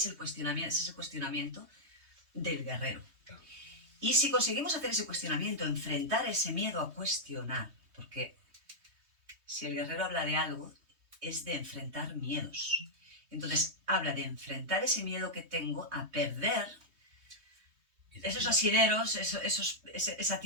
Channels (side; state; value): left; late; 3.2 ms